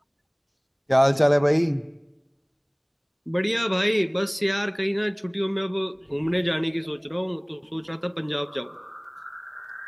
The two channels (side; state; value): both; identical; correlation 1.00